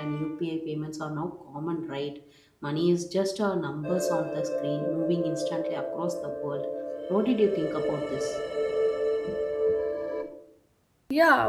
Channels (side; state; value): both; identical; correlation 1.00